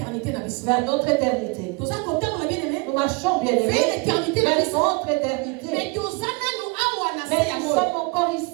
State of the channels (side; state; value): left; quieter; 28.9 dB